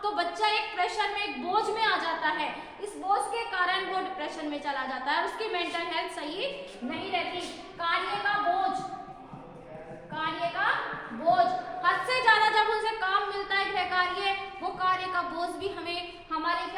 तो बच्चा एक प्रेशर में, एक बोझ में आ जाता है। इस बोझ के कारण वो डिप्रेशन में चला जाता है, उसकी मेंटल हेल्थ सही नहीं रहती। कार्य का बोझ, हद से ज्यादा जब उनसे काम मिलता है गृह कार्य, वो कार्य का बोझ भी हमारे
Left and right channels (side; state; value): both; identical; correlation 1.00